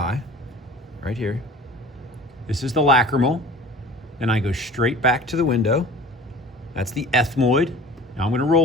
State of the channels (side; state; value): both; normal; correlation 0.42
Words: right here. This is the lacrimal. Then I go straight back to the window. That's the ethmoid. Now I'm going to